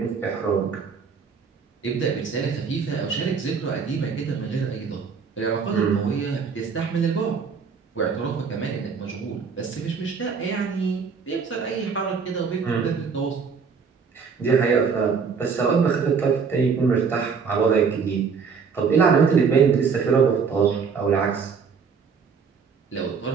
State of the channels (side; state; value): left; quieter; 5.8 dB